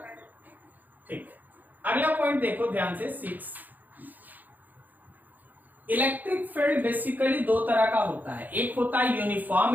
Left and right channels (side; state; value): left; late; 0.084 ms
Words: ठीक। अगला पॉइंट देखो ध्यान से, 6। इलेक्ट्रिक फील्ड बेसिकली दो तरह का होता है, एक होता है